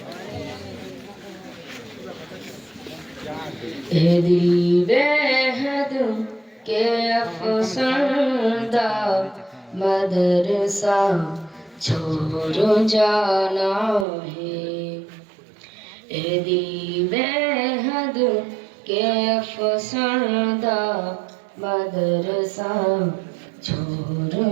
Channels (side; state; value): left; drops out; at 14.1 s